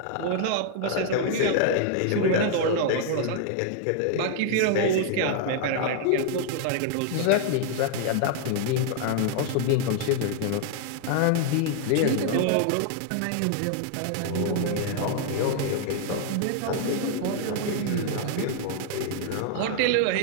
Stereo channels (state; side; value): different; both; correlation 0.00